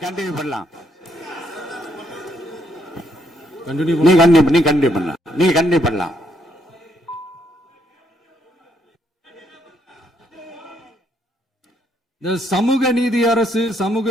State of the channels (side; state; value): both; normal; correlation 0.73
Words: கண்டினியூ பண்ணலாம். நீங்க கண்டினியூ பண்ணலாம். இந்த சமூக